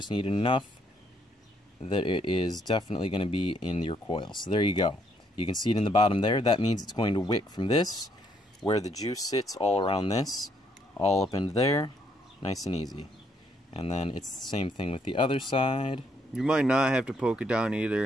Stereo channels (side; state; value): both; normal; correlation 0.71